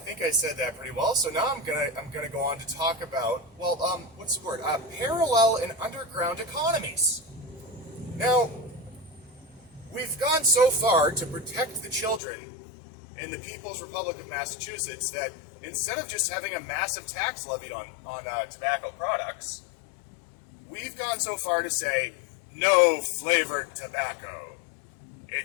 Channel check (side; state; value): right; drops out; at 12.2 s